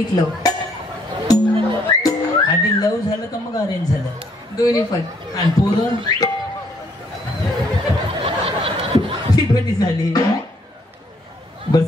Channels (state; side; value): normal; both; correlation 0.67